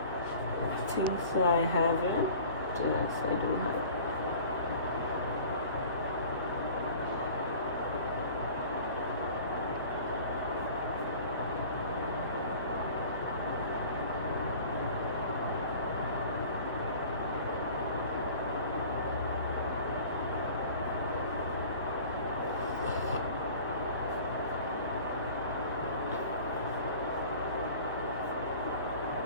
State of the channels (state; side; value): inverted; both; correlation -0.44